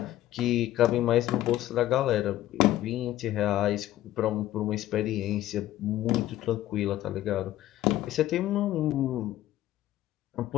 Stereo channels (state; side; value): quieter; right; 14.1 dB